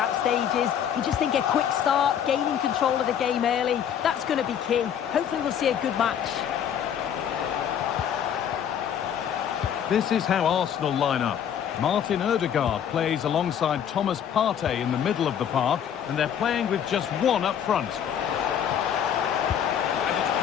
stages. You just think a quick start, gaining control of the game early, that's going to be key. Hopefully we'll see a good match. This is how Arsenal line up. Martin Ødegaard plays alongside Thomas Partey in the middle of the park, and they're playing with just one up front. And it's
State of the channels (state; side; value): quieter; right; 9.0 dB